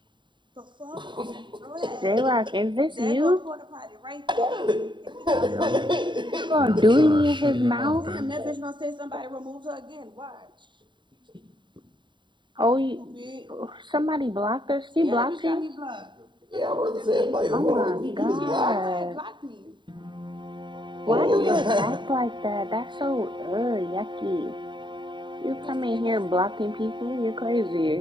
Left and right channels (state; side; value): late; left; 0.23 ms